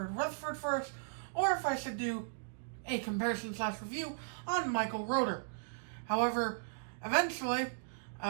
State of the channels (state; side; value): silent; left; digital silence